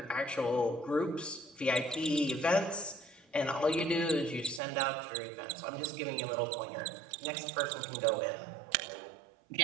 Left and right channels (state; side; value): drops out; left; at 4.6 s